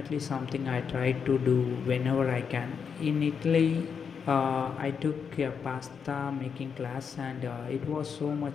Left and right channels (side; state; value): right; quieter; 6.5 dB